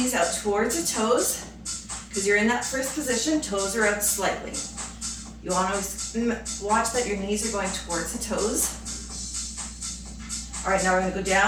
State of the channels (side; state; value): both; identical; correlation 1.00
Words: out towards the toes, because you're in that first position, toes are out slightly. You want to watch that your knees are going towards the toes. All right, now we're going to go